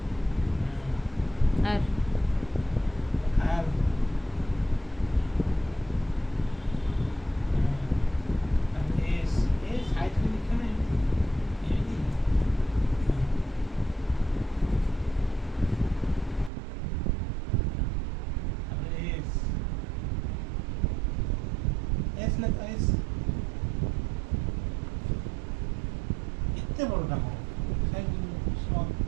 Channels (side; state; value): left; drops out; at 16.5 s